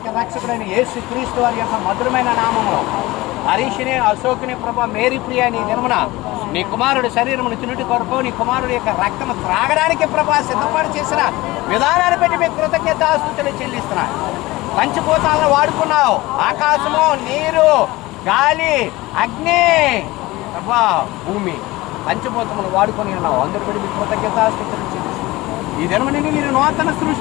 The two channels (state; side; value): quieter; right; 19.8 dB